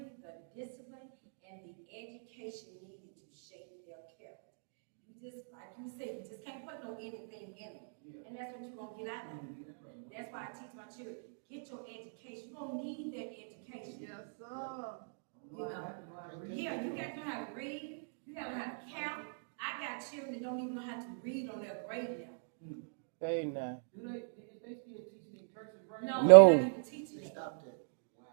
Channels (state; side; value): silent; left; digital silence